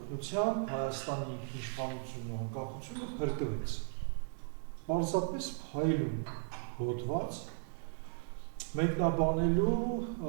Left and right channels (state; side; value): silent; left; digital silence